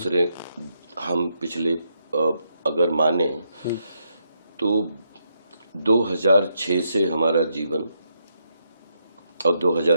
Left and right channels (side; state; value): both; inverted; correlation -0.79